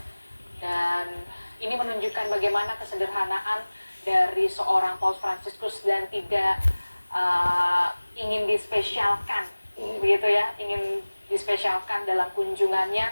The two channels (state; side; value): inverted; both; correlation -1.00